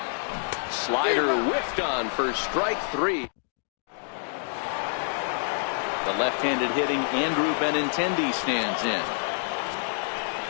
Slider whiffed on for strike 3. The left-handed hitting Andrew Benintendi stands in.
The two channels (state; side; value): silent; right; digital silence